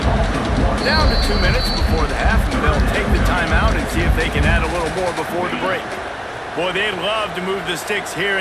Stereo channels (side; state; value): both; identical; correlation 1.00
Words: Down to 2 minutes before the half, and they'll take the timeout and see if they can add a little more before the break. Boy, they'd love to move the sticks here